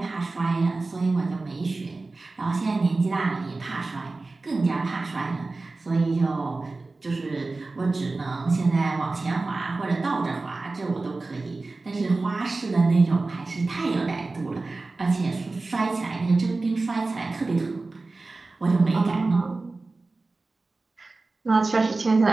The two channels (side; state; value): left; quieter; 3.5 dB